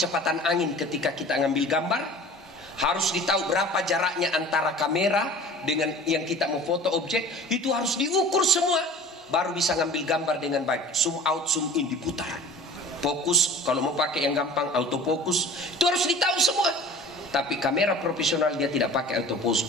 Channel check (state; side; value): normal; both; correlation 0.43